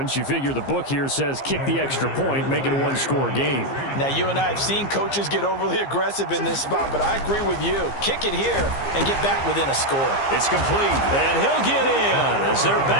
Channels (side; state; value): right; late; 15 ms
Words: You figure the book here says kick the extra point, make it a one-score game. Now, you and I have seen coaches get overly aggressive in this spot, but I agree with you. Kick it here and get back within a score. It's complete, and he'll get in as they're